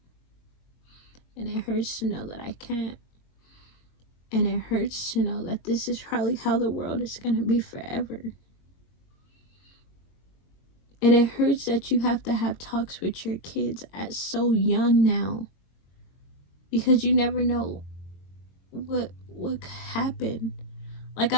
And it hurts to know that I can't. And it hurts to know that this is probably how the world is going to be forever. And it hurts that you have to have talks with your kids at so young now. Because you never know what could happen. Like,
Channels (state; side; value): late; right; 22 ms